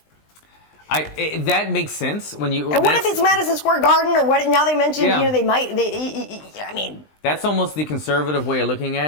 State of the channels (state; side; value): late; right; 20 ms